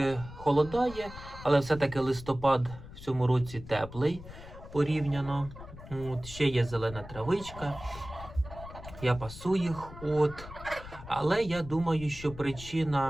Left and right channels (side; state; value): left; noise; rumble, 14 dB below the sound